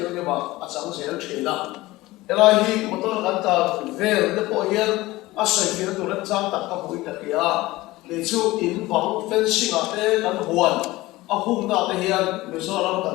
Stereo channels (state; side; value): quieter; right; 19.0 dB